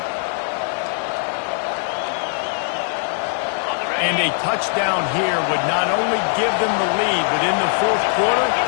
And a touchdown here would not only give them the lead, but in the 4th quarter,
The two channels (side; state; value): right; silent; 63 dB below the other